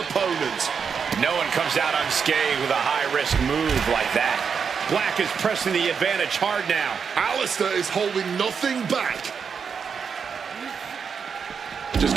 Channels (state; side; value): quieter; left; 6.3 dB